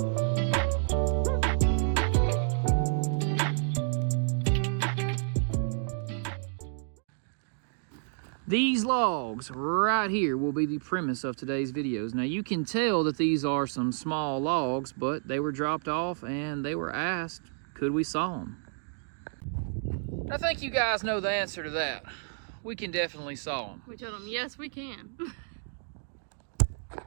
These logs right here will be the premise of today's videos. Now you can tell that these are some small logs, but they were dropped off and they were asked, could we saw them? I think you guys know the answer to that. We can definitely saw them. We told them, yes, we can.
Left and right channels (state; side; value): silent; left; digital silence